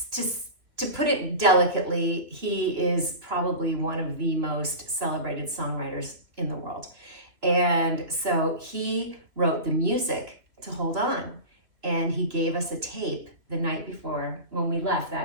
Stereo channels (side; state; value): left; late; 3.0 ms